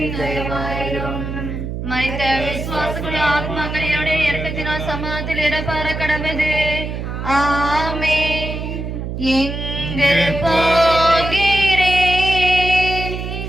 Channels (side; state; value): right; noise; hum, 5 dB below the sound